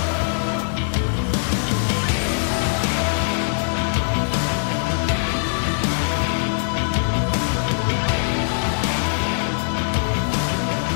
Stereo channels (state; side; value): silent; right; 64 dB below the other